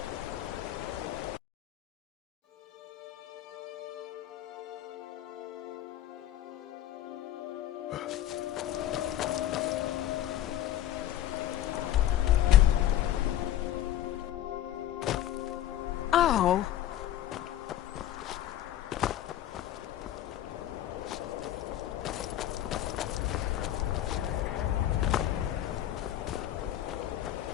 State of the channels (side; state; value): right; quieter; 12.5 dB